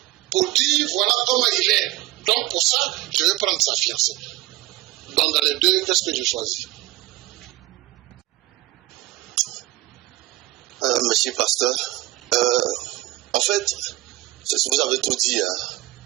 pour dire voilà comment il est. Donc pour ça, je vais prendre sa fiancée. Donc dans les deux, qu'est-ce que je choisis? Monsieur Pasteur, en fait, vous avez tout dit. Hein.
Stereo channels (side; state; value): left; quieter; 17.6 dB